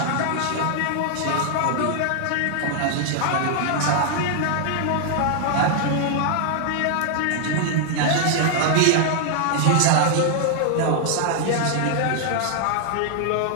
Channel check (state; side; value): different; both; correlation -0.01